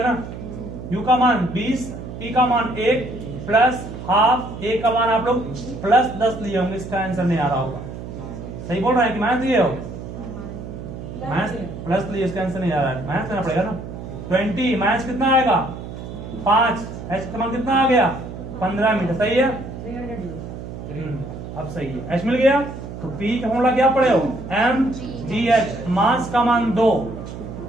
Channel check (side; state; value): right; noise; hum, 10 dB below the sound